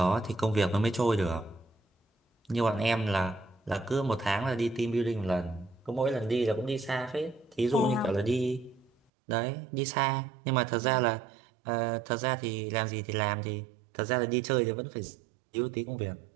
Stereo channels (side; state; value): left; drops out; at 8.9 s